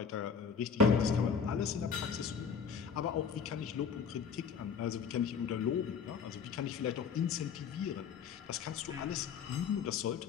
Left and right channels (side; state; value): right; quieter; 6.3 dB